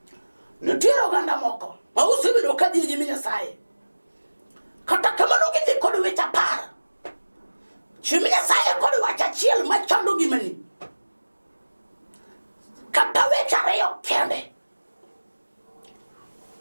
nitiere oganda moko ma osebedo ka dhi nyime nyasaye kata kamano gidhi kod weche apar chimi nyasaye kod wach achiel machando ngimani kata weche ariyo kende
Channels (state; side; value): inverted; both; correlation -1.00